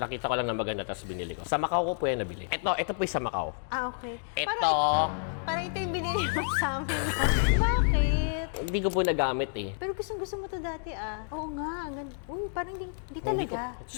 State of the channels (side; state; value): right; silent; digital silence